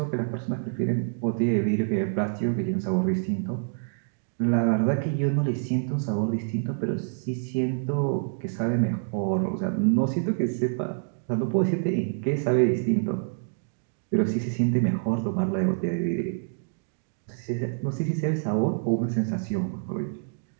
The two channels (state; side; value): silent; left; digital silence